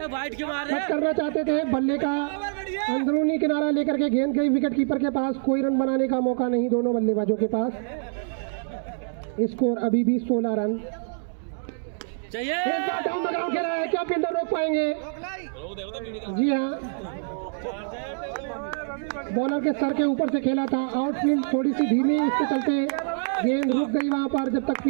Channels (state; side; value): silent; left; digital silence